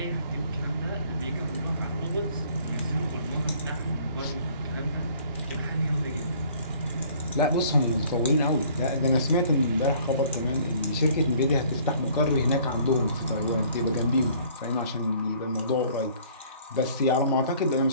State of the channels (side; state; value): both; inverted; correlation -0.56